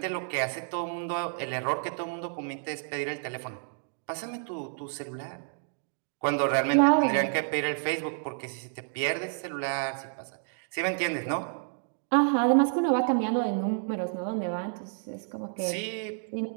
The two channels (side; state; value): left; silent; 58 dB below the other